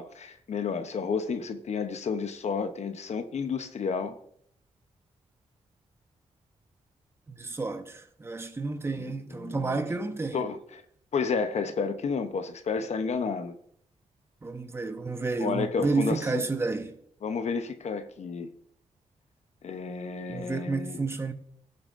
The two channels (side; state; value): both; normal; correlation 0.62